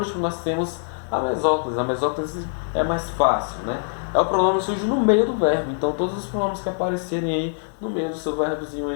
nós temos a mesóclise. A mesóclise é mais fácil, né? É o pronome que surge no meio do verbo. Então todos os pronomes que aparecerem aí no meio do seu verbozinho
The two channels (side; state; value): right; silent; digital silence